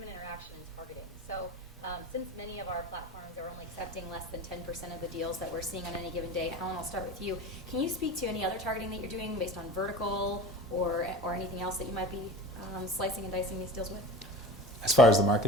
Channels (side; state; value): both; normal; correlation 0.35